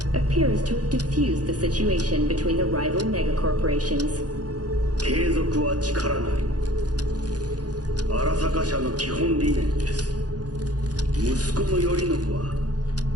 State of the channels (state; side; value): late; left; 0.69 ms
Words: appears to have diffused the situation between the rival megacorporations. 継続は力なり。荒坂社の基本理念です。息子の頼信は